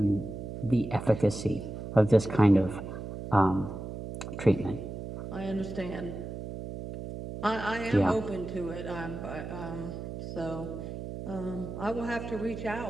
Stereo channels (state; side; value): noise; right; hum, 8 dB below the sound